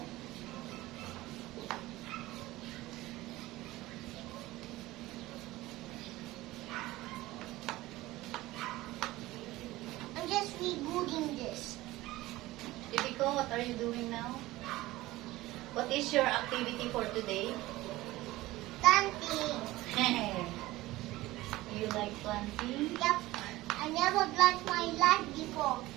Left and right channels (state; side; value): quieter; left; 18.1 dB